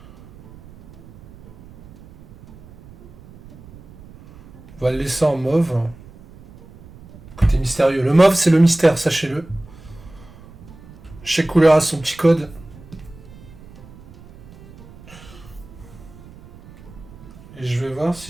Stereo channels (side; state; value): right; noise; rumble, 21 dB below the sound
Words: On va le laisser en mauve. Côté mystérieux. Le mauve, c'est le mystère, sachez-le. Chaque couleur a son petit code. Et je vais voir